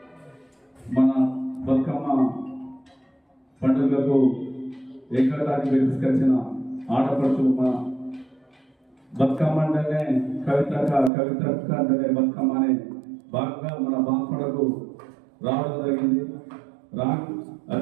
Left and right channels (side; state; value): left; drops out; at 11.1 s